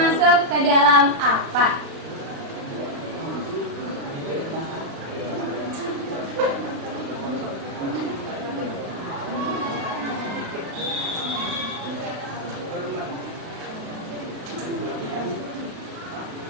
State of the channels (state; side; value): late; left; 36 ms